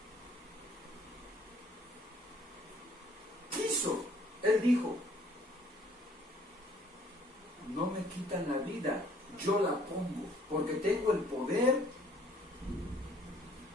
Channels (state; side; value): normal; both; correlation 0.59